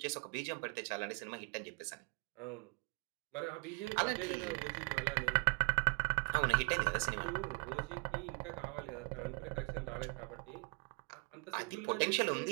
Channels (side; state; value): left; quieter; 32.7 dB